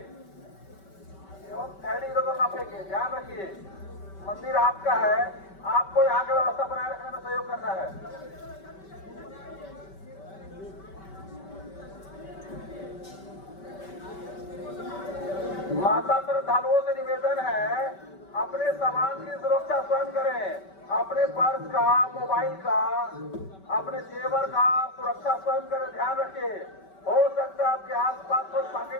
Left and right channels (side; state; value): right; late; 5.2 ms